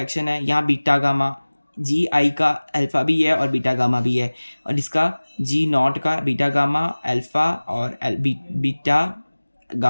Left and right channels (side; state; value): both; inverted; correlation -1.00